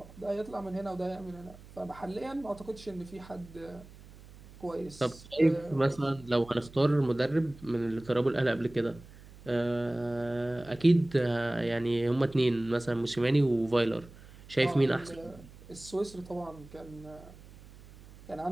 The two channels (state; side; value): noise; right; hum, 20 dB below the sound